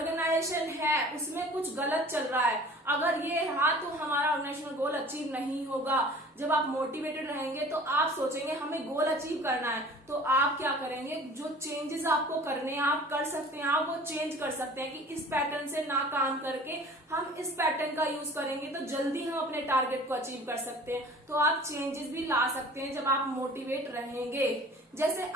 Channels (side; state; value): both; normal; correlation 0.45